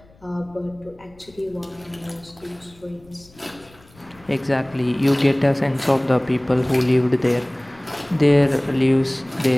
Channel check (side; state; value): left; noise; rumble, 27 dB below the sound